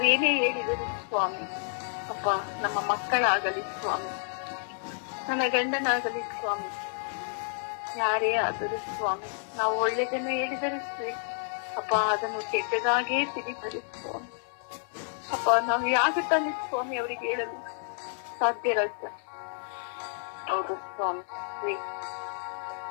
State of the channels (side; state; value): right; silent; 58 dB below the other